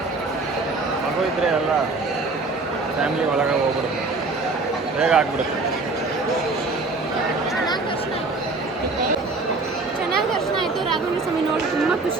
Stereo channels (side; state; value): left; quieter; 3.6 dB